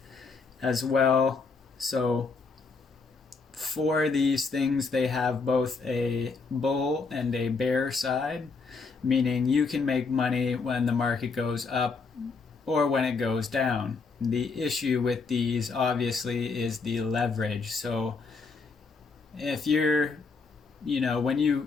as well. So for these things, they have both a bull and a bear side, meaning you can make money when the market goes up or when it goes down. The issue with these obviously is the leverage. So if you're, when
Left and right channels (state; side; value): quieter; right; 4.5 dB